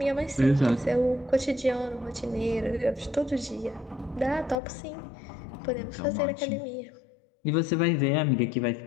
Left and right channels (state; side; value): drops out; right; at 4.6 s